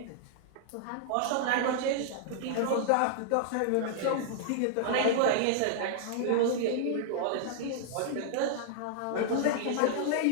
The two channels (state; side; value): different; both; correlation -0.01